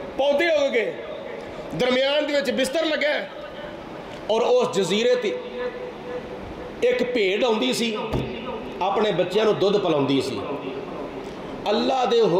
پودے اگ گئے, درمیان دے وچ بستر لگا, اور اس جزیرے تے ایک بھیڑ آندی سی اپنے بچیاں نو دودھ پلاندی سی. اللہ دے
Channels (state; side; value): identical; both; correlation 1.00